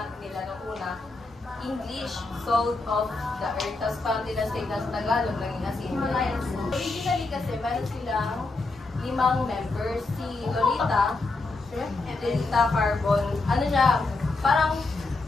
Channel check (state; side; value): quieter; right; 3.4 dB